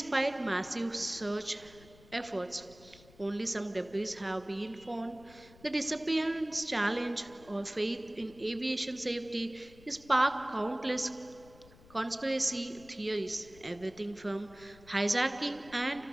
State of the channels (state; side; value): noise; left; rumble, 23 dB below the sound